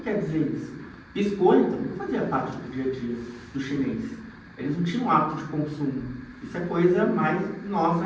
dizer isso? Biscoito não fazia parte do dia a dia do chinês. Eles não tinham hábito de consumo. Isso é coisa mais nossa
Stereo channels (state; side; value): identical; both; correlation 1.00